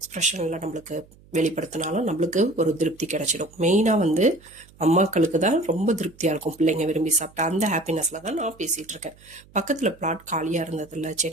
நம்மளுக்கு வெளிப்படுத்தினாலும் நம்மளுக்கு ஒரு திருப்தி கிடைச்சிடும். மெயினாக வந்து அம்மாக்களுக்கு தான் ரொம்ப திருப்தியாக இருக்கும் பிள்ளைங்க விரும்பி சாப்பிட்டா. அந்த ஹாப்பினஸில் தான் நான் பேசிகிட்டு இருக்கேன். பக்கத்தில் பிளாட் காலியாக இருந்ததில்ல,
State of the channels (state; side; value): noise; right; hum, 26 dB below the sound